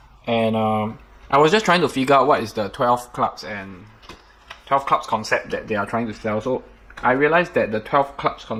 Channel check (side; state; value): both; identical; correlation 1.00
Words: and I was just trying to figure out what is the 12 clubs concept that they are trying to sell. So I realized that the 12 clubs